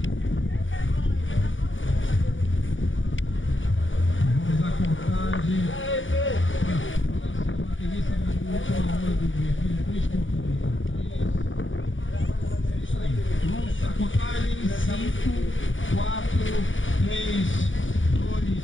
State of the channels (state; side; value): late; right; 0.57 ms